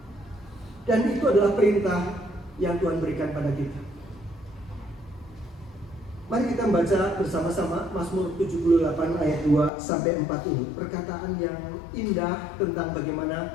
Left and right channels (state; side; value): drops out; right; at 9.7 s